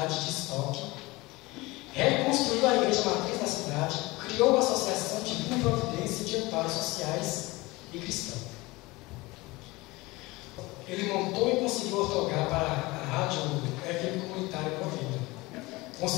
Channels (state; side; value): quieter; right; 21.9 dB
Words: de Estoque. Reconstruiu a igreja matriz da cidade, criou a Associação Divina Providência de Amparos Sociais e Cristãos. Ele montou e conseguiu ortogar para a rádio FM comunitária Provida.